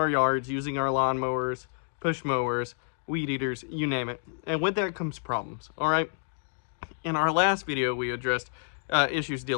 yards using our lawnmowers, push mowers, weed eaters, you name it. And with that comes problems, all right? In our last video, we addressed issues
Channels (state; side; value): silent; right; digital silence